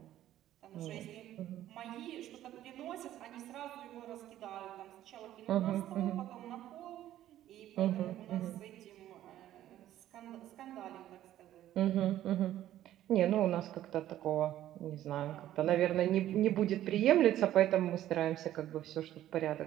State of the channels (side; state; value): left; quieter; 12.9 dB